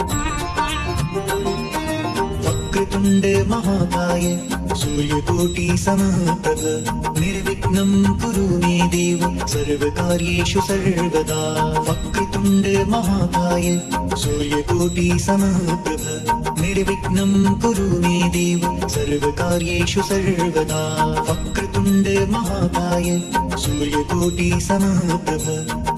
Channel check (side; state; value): both; identical; correlation 1.00